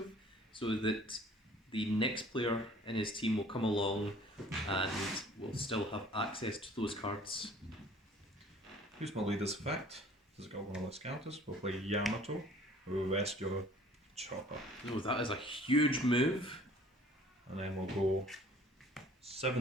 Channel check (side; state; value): both; normal; correlation 0.52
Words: so that the next player in his team will come along and will still have access to those cards. Here's my leader's effect. Does it got 1 of those counters? We'll play Yamato. We'll rest your Chopper. Oh, that is a huge move. And then we'll go